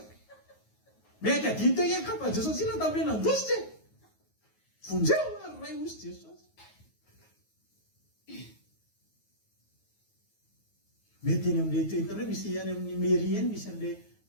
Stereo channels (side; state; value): right; late; 9.4 ms